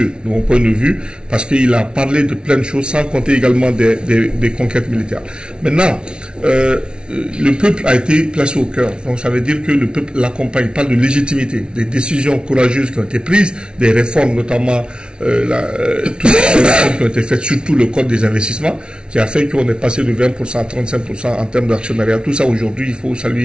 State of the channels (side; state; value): left; late; 0.056 ms